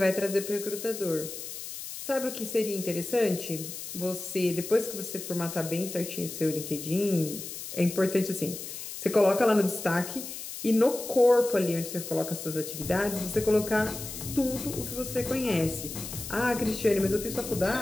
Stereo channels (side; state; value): left; noise; hiss, 9 dB below the sound